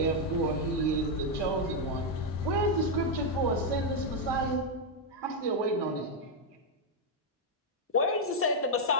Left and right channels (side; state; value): both; normal; correlation 0.00